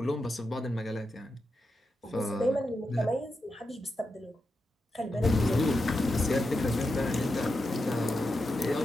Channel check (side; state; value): both; normal; correlation 0.88